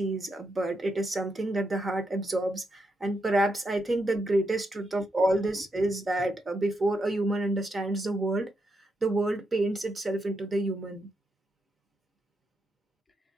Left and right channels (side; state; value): both; normal; correlation 0.82